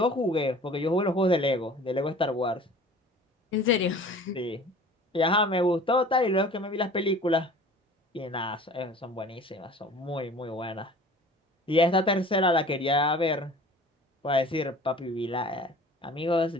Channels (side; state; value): both; normal; correlation 0.45